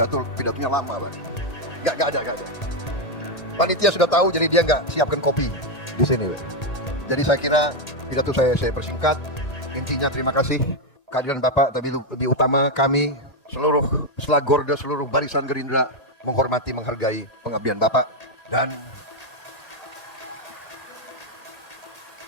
lama, Pak. Gak ada. Panitia sudah tahu, jadi dia nggak siapkan kopi di sini, Pak. Jadi saya kira pidato saya persingkat. Intinya terima kasih kehadiran Bapak, tapi lebih utama kami seluruh selagorda, seluruh barisan Gerindra menghormati, menghargai pengabdian Bapak. Dan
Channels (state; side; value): late; right; 1.8 ms